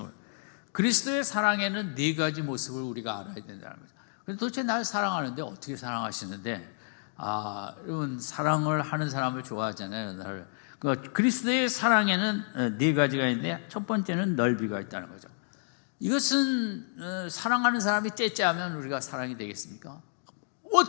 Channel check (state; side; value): silent; right; digital silence